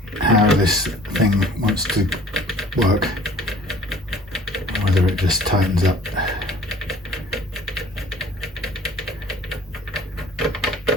this thing wants to work, whether it just tightens up.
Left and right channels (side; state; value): both; normal; correlation 0.52